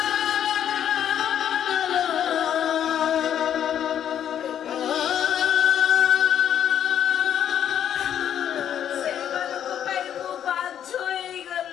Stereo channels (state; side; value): quieter; right; 9.7 dB